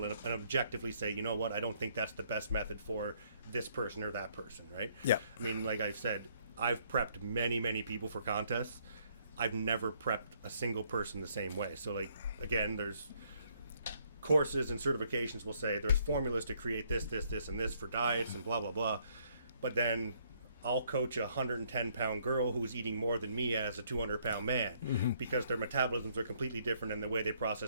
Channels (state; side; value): inverted; both; correlation -0.68